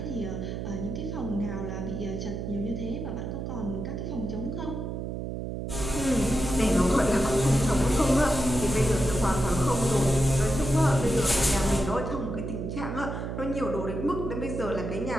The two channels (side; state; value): right; noise; hum, 5 dB below the sound